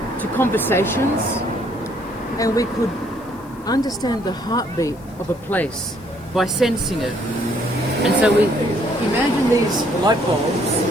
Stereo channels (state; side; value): noise; left; hiss, 27 dB below the sound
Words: to conversations, and we could understand the heartbeat of a place by sensing it. And so we imagine these light bulbs